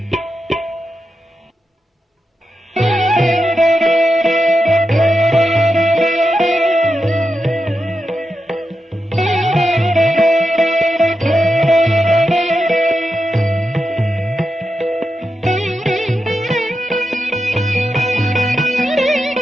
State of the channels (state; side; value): normal; both; correlation 0.88